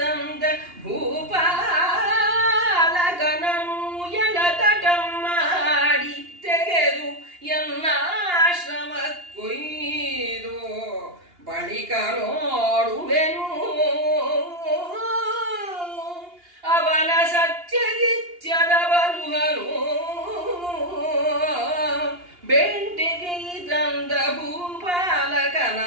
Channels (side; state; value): left; late; 2.8 ms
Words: ಭೂಪಾಲಕನನು ಎಳತಟಂ ಮಾಡಿ ತೆಗೆದು ಎನ್ನಾಶ್ರಮ ಕೊಯ್ದು ಬಳಿಕ ನೋಡುವೆನು ಅವನ ಸತ್ಯಗಿತ್ಯದ ಬಲುಹನು ಬೆಂಟೆಗೆ ತಂದ